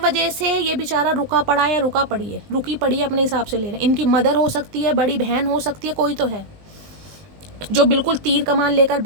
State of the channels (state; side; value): late; left; 19 ms